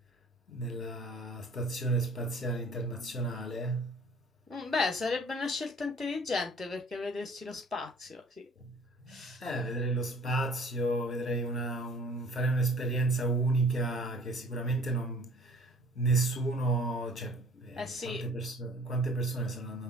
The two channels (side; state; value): both; normal; correlation 0.52